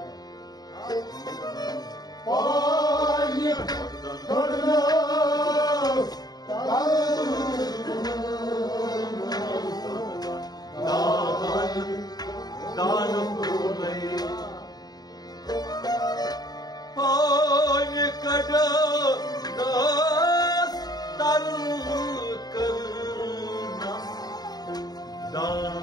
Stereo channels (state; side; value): late; right; 0.19 ms